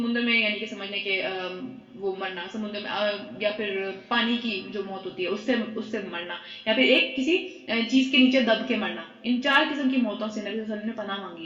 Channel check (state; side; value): identical; both; correlation 1.00